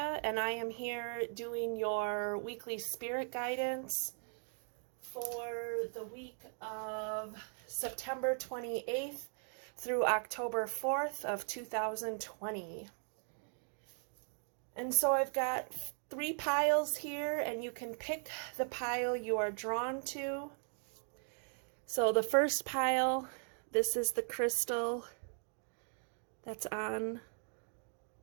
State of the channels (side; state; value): left; silent; 52 dB below the other